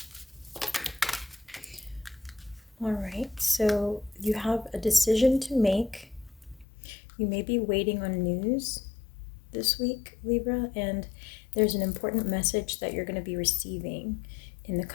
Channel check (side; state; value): right; drops out; at 6.7 s